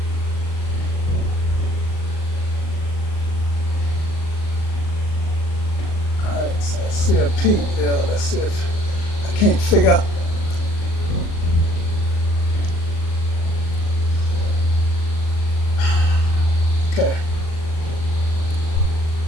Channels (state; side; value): late; right; 38 ms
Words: All right, so I see a peak there. Let's see if can't figure out. Okay.